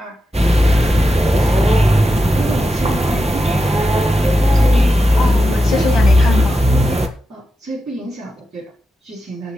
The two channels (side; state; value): both; normal; correlation 0.89